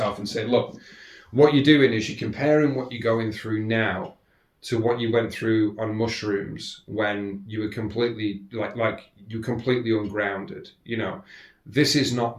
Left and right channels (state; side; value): identical; both; correlation 1.00